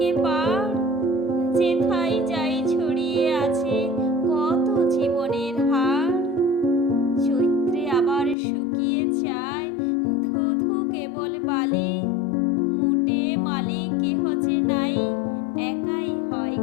পাড়, যেথায় যাই ছড়িয়ে আছে কত জীবনের হাড়। চৈত্রে আবার শুকিয়ে যায় ধু ধু কেবল বালি, মুটে মালিক কেহ যে নাই, একাই হয়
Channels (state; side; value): drops out; right; at 8.3 s